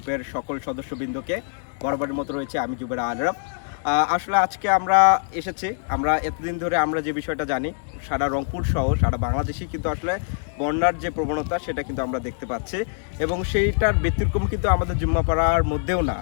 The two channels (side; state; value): right; silent; digital silence